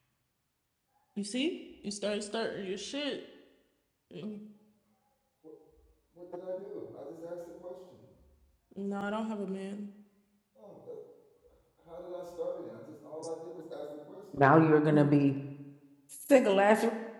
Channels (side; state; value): both; identical; correlation 1.00